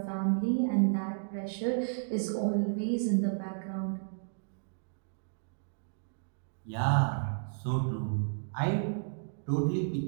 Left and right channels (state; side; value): silent; left; digital silence